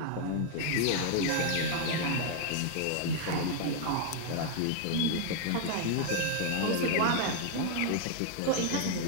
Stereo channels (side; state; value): both; different; correlation 0.00